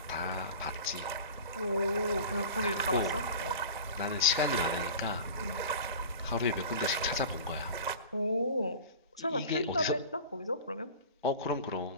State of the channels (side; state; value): both; inverted; correlation -0.37